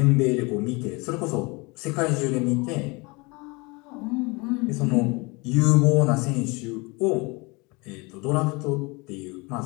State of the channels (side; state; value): right; quieter; 27.1 dB